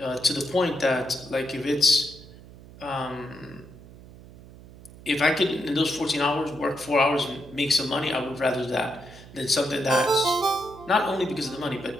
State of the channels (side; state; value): right; noise; hum, 19 dB below the sound